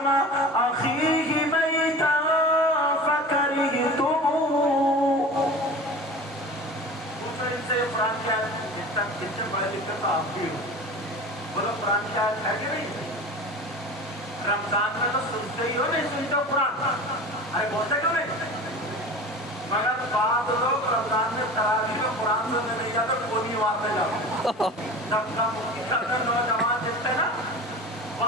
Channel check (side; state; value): both; normal; correlation 0.35